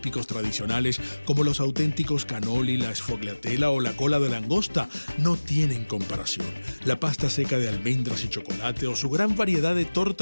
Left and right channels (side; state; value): both; inverted; correlation -1.00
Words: tradicionales, como los auténticos cannoli, la sfogliatella o la cola de langosta, no tienen comparación. La pasta seca de almendras y chocolate o su gran variedad de